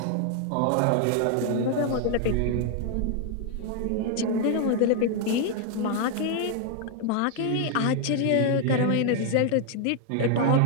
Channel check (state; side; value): different; both; correlation 0.00